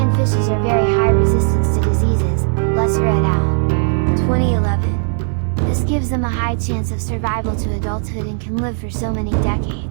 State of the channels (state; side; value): silent; left; 56 dB below the other